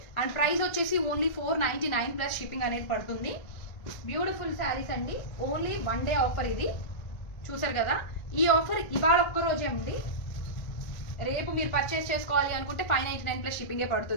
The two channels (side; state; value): right; late; 1.4 ms